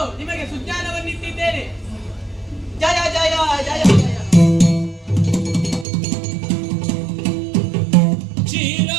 ನಿಮಗೆ ಸುಜ್ಞಾನವನ್ನಿಟ್ಟಿದ್ದೇನೆ. ಜಯ ಜಯ ಜಯ ಜಯ.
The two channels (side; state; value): left; drops out; at 5.9 s